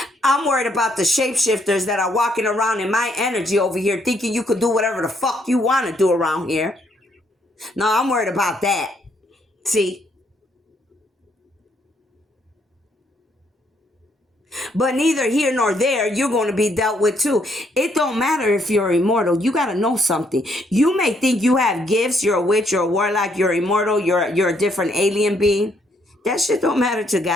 I'm worried about the shapeshifters that are walking around in my energy over here thinking you could do whatever the fuck you want to do around here. No, I'm worried about that. See? But neither here nor there, you're going to be dealt with too. It don't matter if you're immortal. You got to know something. You may think you have gifts. You're a witch, you're a warlock, you're immortal, you're a different alien being. That shit don't matter to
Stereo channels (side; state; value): both; normal; correlation 0.71